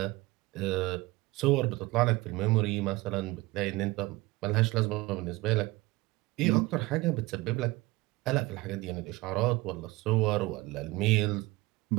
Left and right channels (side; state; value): left; quieter; 21.1 dB